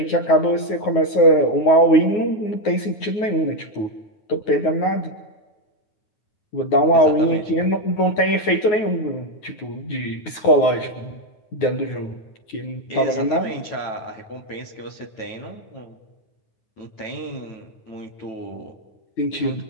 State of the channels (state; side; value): late; right; 9.4 ms